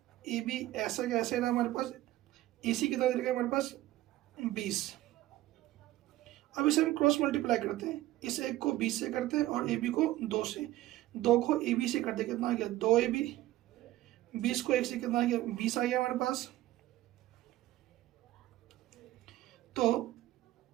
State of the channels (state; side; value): quieter; left; 15.8 dB